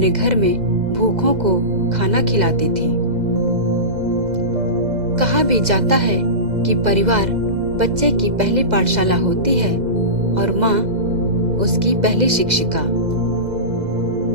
घर में भूखों को खाना खिलाती थी। कहा भी जाता है कि परिवार बच्चे की पहली पाठशाला होती है और माँ उसकी पहली शिक्षिका।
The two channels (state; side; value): late; left; 2.0 ms